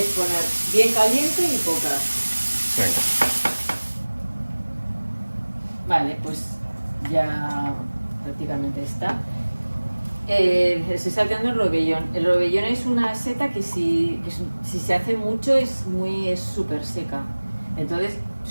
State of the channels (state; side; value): inverted; both; correlation -1.00